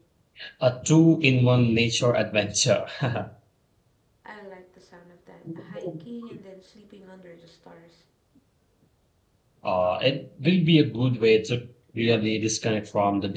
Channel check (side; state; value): both; identical; correlation 1.00